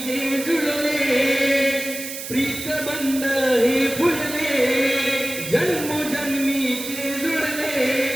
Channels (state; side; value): noise; right; hiss, 8 dB below the sound